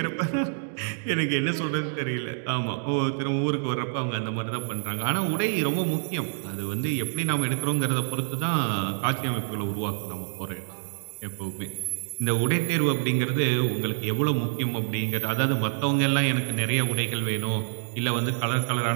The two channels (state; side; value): silent; left; 60 dB below the other